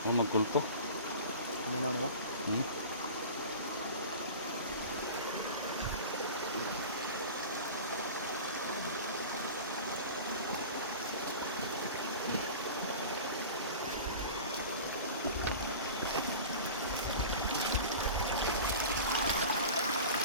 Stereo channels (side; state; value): both; inverted; correlation -0.35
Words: Yung magkulto? May naon ba?